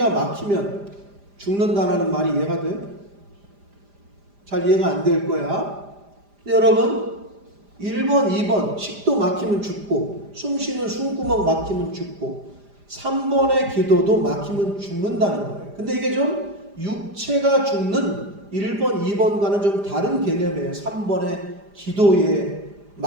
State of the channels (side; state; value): left; late; 5.0 ms